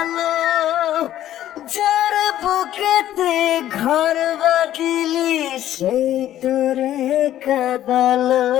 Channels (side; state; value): right; quieter; 12.5 dB